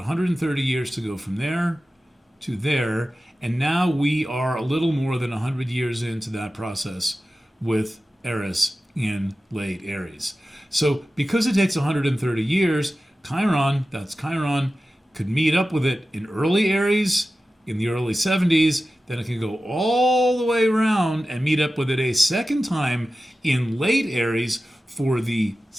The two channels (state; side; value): normal; both; correlation 0.94